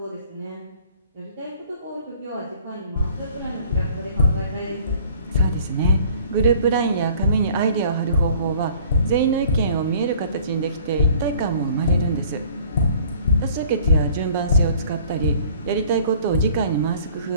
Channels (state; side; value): inverted; both; correlation -0.52